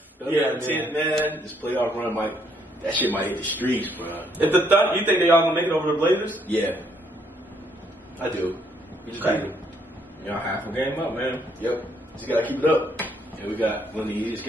Yeah, man. This playoff run that shit might hit the streets, bro. If the you think they all gonna make it over the Blazers? Yeah, I do. We just Okay. need to- Y'all half a game up, man. Yep, just gotta keep it up. And we got one of the easiest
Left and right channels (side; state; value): both; normal; correlation 0.69